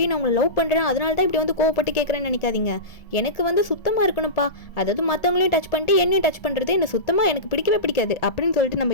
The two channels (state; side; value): late; right; 1.7 ms